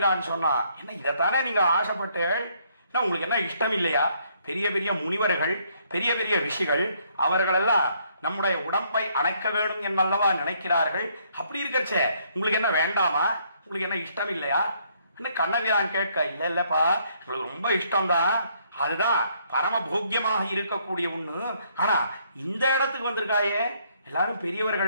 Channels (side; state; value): both; inverted; correlation -0.69